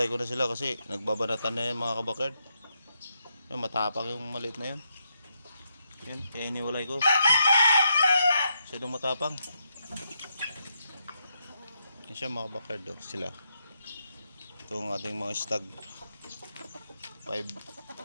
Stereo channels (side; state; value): both; inverted; correlation -0.80